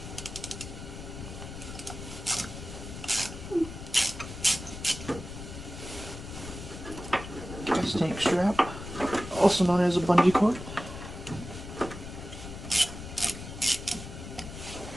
Gas tank strap, also known as a bungee cord.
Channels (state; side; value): noise; left; rumble, 10 dB below the sound